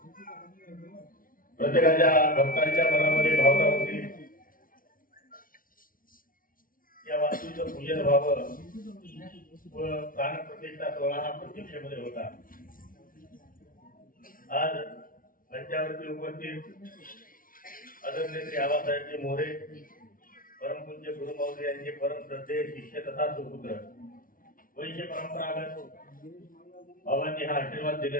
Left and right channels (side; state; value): right; late; 0.40 ms